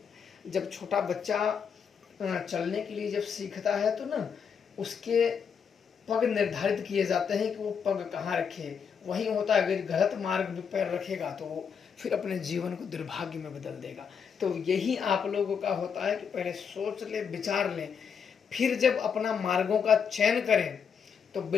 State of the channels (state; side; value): quieter; right; 6.8 dB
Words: जब छोटा बच्चा चलने के लिए जब सीखता है तो ना उसके पग निर्धारित किए जाते हैं कि वो पग कहाँ रखे। वही होता है, अगर गलत मार्ग पे पैर रखेगा तो वो फिर अपने जीवन को दुर्भाग्य में बदल देगा। तो यही आप लोगों का होता है कि पहले सोच ले, विचार लें, फिर जब अपना मार्गों का चयन करें तो